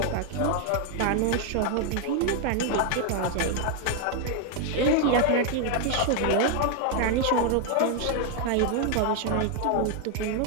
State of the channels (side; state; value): both; different; correlation 0.00